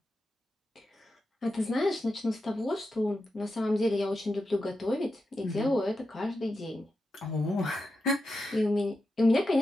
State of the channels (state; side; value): normal; both; correlation 0.89